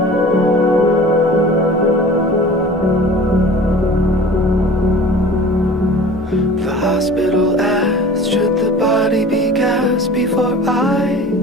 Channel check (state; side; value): normal; both; correlation 0.41